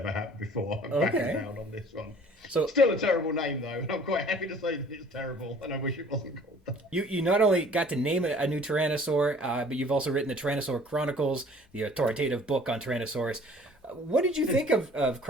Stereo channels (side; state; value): both; normal; correlation 0.52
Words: happened before. I'm backing down on this one. So still a terrible name though, and I'm quite happy to say that it's terrible, and I wish it wasn't called that. You not only got to name a new Tyrannosaur, but you've also written the Tyrannosaur Chronicles, the authoritative book on Tyrannosaurus. What did you think of